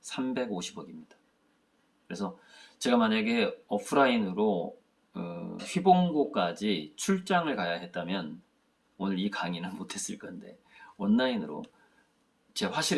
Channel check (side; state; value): both; identical; correlation 1.00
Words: 350억입니다. 그래서 제가 만약에 오프라인으로 휘봉고까지 출장을 가야 했다면 오늘 이 강의는 못했을 건데, 온라인으로 제